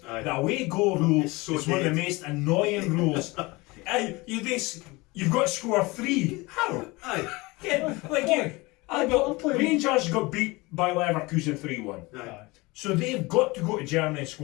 Aye. The away goal rule It's so is one of the dead. most annoying rules. Aye, you've got to score 3. How? Aye. Yeah, like you. I'm playing- Rangers got beat by Leverkusen 3-1. Aye. So they've got to go to Germany and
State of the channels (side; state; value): right; quieter; 23.4 dB